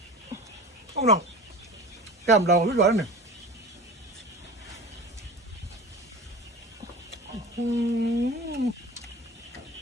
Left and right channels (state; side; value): normal; both; correlation 0.35